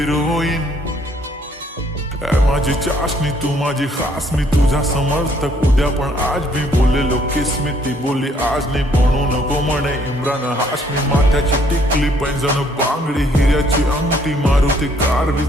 माझी चाशनी तू माझी खास, मी तुझा समर्थक उद्या पण आज मी बोललेलो किस मी. ती बोलली आज नाही बनू नको म्हणे इम्रान हाशमी. माथ्याची टिकली पैंजण बांगडी हिऱ्याची अंगठी, मारुती कारवी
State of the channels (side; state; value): both; normal; correlation 0.65